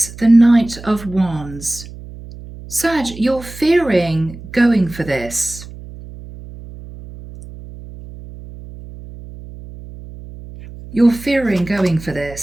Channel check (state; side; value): noise; right; hum, 15 dB below the sound